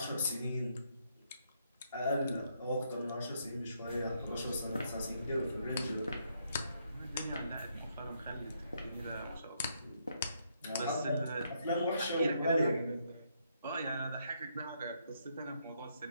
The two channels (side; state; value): both; inverted; correlation -0.75